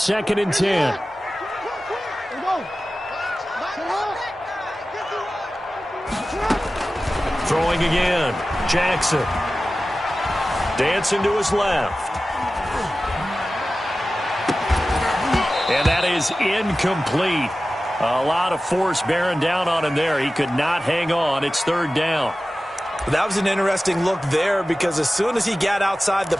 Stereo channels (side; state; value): both; normal; correlation 0.95